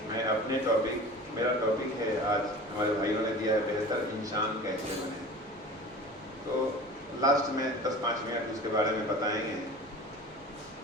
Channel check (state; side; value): normal; both; correlation 0.38